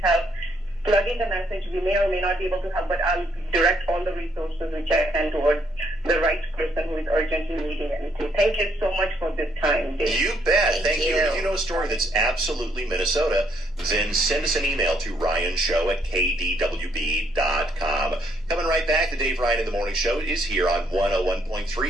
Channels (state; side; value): normal; both; correlation 0.70